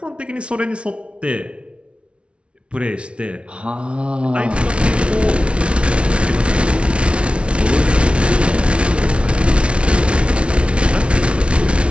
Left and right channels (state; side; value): late; left; 0.059 ms